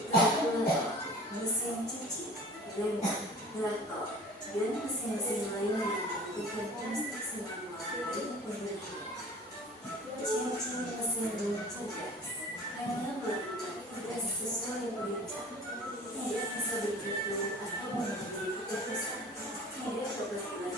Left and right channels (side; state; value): both; normal; correlation 0.43